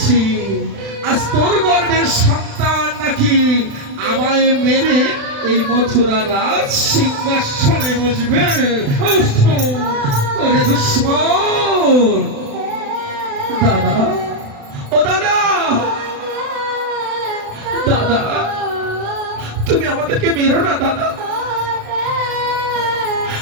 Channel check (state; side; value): late; left; 36 ms